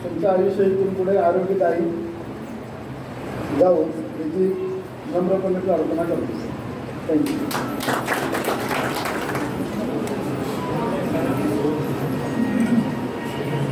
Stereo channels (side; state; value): both; identical; correlation 1.00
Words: तुमचं आयुष्य इथून पुढे आरोग्यदायी जाऊ याची नम्रपणे प्रार्थना करतो. थँक्यू.